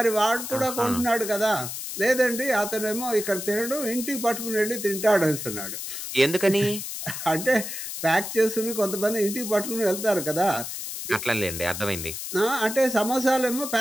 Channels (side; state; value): left; noise; hiss, 7 dB below the sound